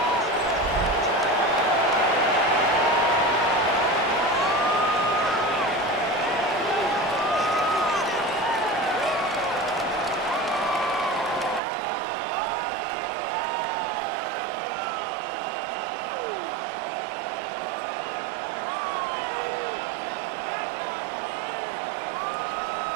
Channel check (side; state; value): left; drops out; at 11.6 s